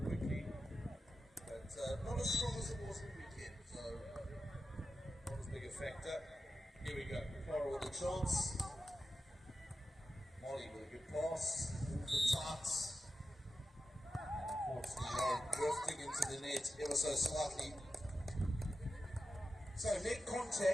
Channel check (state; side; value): normal; both; correlation 0.91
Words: But not as strong as it was in the weekend, so not as big a factor. Here we go, Clara with a chance. Molly with a good pass, all the tights. And unfortunately, Lauren drifting into the net ever so slightly. So net